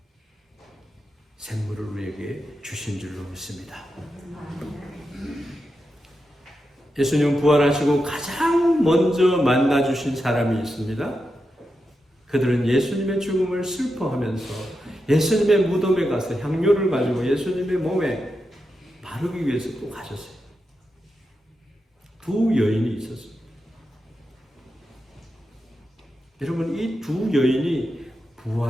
생물을 우리에게 주신 줄로 믿습니다. 예수님 부활하시고 가장 먼저 만나주신 사람이 있습니다. 그들은 예수님의 죽음을 슬퍼하면서 예수님의 무덤에 가서 향료를 가지고 예수님의 몸에 바르기 위해서 또 가셨어요. 두 여인이 있었습니다. 여러분, 이 두 여인이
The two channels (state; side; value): normal; both; correlation 0.88